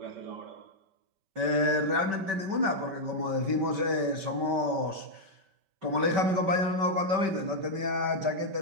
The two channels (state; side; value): late; left; 5.2 ms